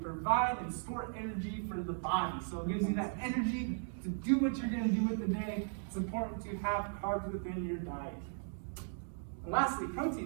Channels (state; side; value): silent; left; digital silence